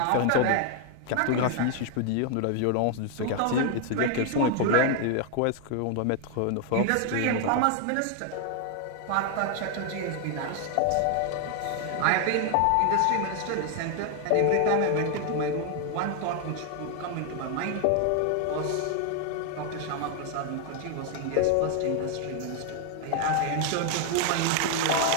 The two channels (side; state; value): both; different; correlation 0.00